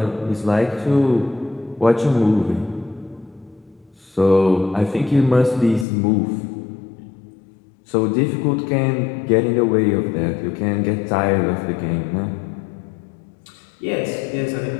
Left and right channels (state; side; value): drops out; right; at 5.9 s